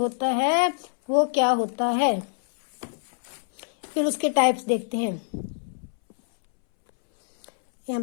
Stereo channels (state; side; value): silent; right; 62 dB below the other